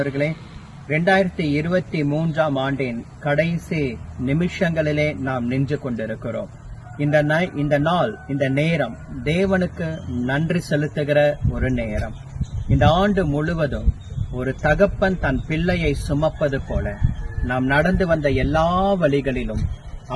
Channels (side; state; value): both; identical; correlation 1.00